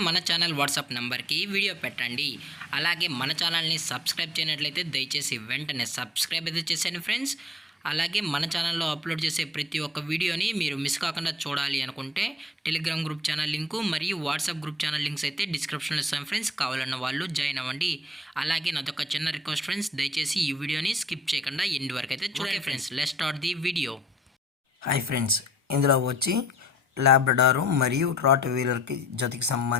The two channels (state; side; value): normal; both; correlation 0.60